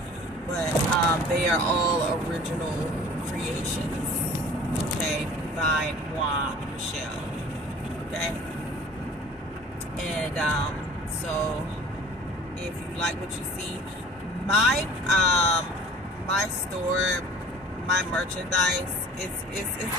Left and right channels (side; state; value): both; normal; correlation 0.47